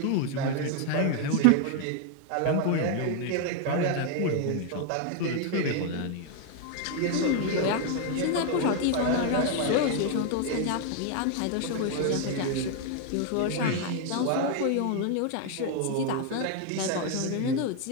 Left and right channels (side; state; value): both; different; correlation 0.00